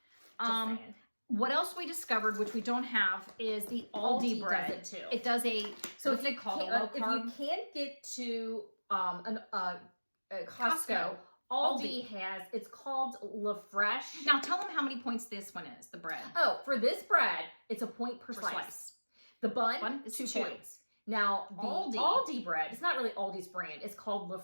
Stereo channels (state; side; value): inverted; both; correlation -1.00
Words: What else we discovered, which we don't have, is the Aldi bread. Does it too. It does a, what's it called, a low carb? If you can't get to Costco, Aldi has, it's called La Fresh. Now tell them how many points this one is, the bread. Oh, for this bread, it's a point per slice. The bun is 2 points. Now, the Aldi bread, it's not really Aldi's brand. It's called La